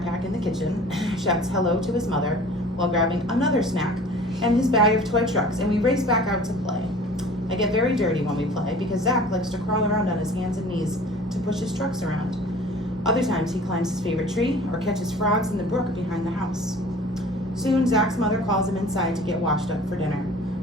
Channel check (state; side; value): normal; both; correlation 0.45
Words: in the kitchen, shouts hello to his mother while grabbing another snack and his bag of toy trucks, and we race back out to play. I get very dirty when we play because Zack likes to crawl around on his hands and knees to push his trucks around. Other times he climbs his favorite tree or catches frogs in the brook behind the house. Soon Zack's mother calls him inside to get washed up for dinner.